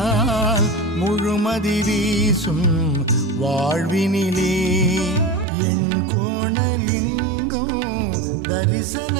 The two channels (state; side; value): drops out; left; at 5.5 s